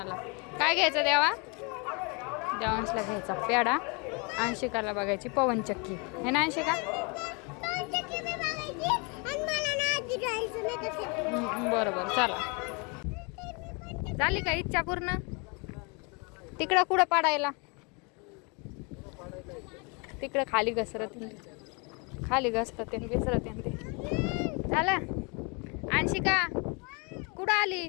काय घ्यायचं देवांशला घ्यायचा पेढा अंशिकाला बघायची पवनचक्की हे ना अंशिका बरोबर चला. झाली का इच्छा पूर्ण. तिकडं कुठं पाडायला तिकडं खाली घसरत खाली घसरत विसरत ते झालं. अंशिका कुठं आली.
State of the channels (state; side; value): quieter; right; 32.1 dB